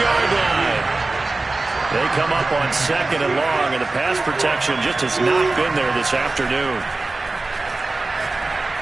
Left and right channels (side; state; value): left; quieter; 3.3 dB